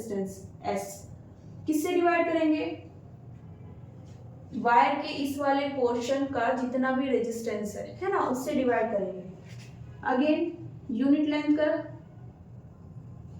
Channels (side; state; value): both; identical; correlation 1.00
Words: S किससे डिवाइड करेंगे, वायर के इस वाले पोर्शन का जितना भी रेजिस्टेंस है ना, उससे डिवाइड करेंगे। अगेन यूनिट लेंथ का